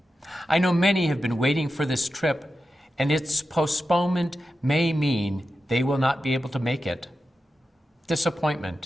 I know many have been waiting for this trip, and its postponement may mean they will not be able to make it.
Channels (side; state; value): both; normal; correlation 0.91